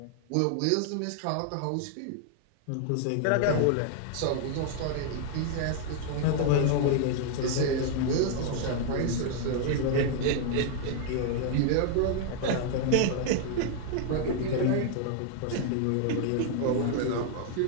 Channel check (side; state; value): both; different; correlation 0.00